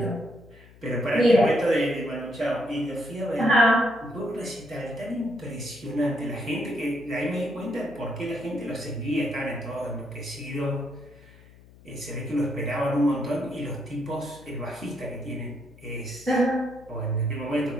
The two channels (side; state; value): left; noise; hum, 23 dB below the sound